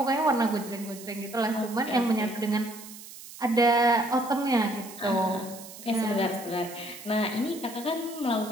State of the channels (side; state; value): right; noise; hiss, 15 dB below the sound